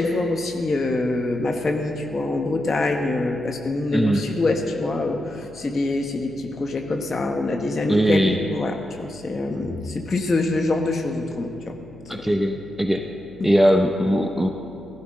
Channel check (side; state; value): left; noise; hum, 21 dB below the sound